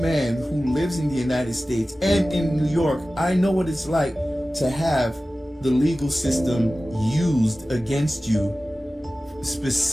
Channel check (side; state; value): both; normal; correlation 0.96